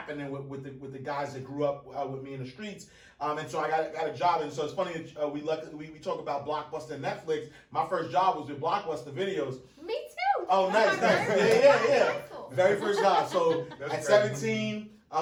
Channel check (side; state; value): both; identical; correlation 1.00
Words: with the guys that grew up with me in the streets, and so I got a job. And so it's funny that we talk about Blockbuster and Netflix. My first job was with Blockbuster Videos. Me too. Oh, nice. Yeah. Very first job. So at 17,